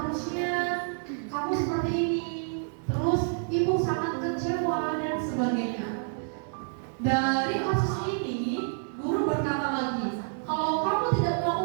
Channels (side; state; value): left; silent; 58 dB below the other